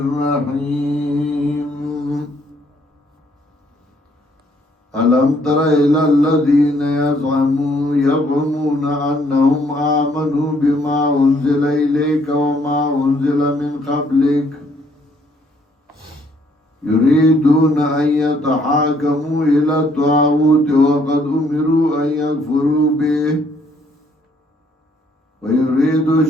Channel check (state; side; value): normal; both; correlation 0.67